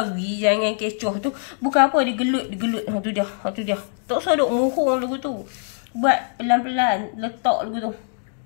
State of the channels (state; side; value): silent; right; digital silence